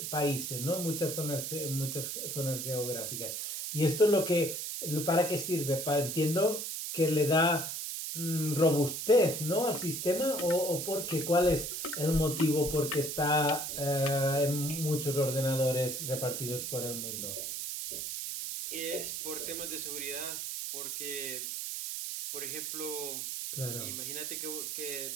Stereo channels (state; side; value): noise; right; hiss, 4 dB below the sound